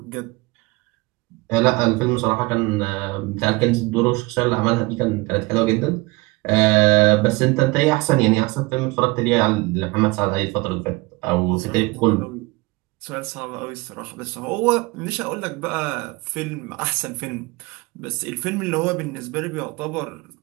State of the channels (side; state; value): left; quieter; 23.5 dB